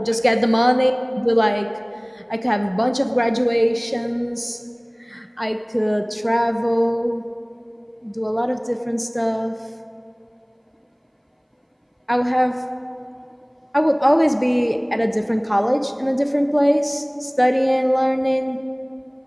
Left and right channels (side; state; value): both; identical; correlation 1.00